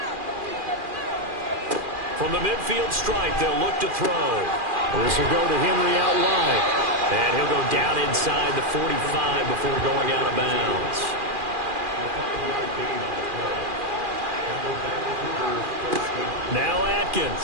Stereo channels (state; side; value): late; left; 2.4 ms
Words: From the midfield stripe, they'll look to throw. This will go to Henry out wide. And he'll go down inside the 45 before going out of bounds. Now